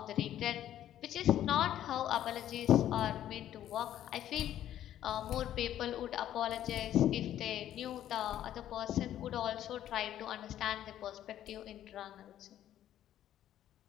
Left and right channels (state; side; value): quieter; right; 11.7 dB